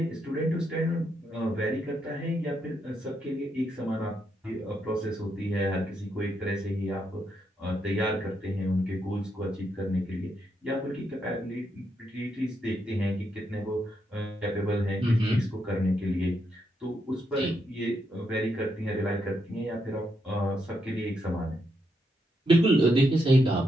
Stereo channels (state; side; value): normal; both; correlation 0.80